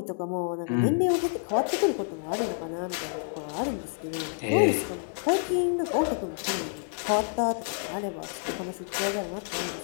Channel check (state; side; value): silent; right; digital silence